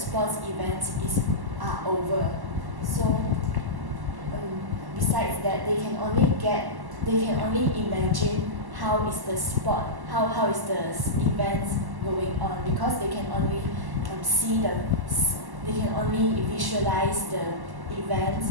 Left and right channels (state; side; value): late; left; 1.1 ms